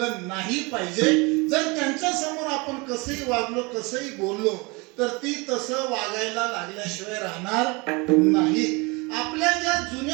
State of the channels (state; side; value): quieter; left; 27.0 dB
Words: नाही पाहिजे. जर त्यांच्या समोर आपण कसंही वागलो, कसंही बोललो तर ती तसं वागायला लागल्याशिवाय राहणार नाही. आपल्या ज्या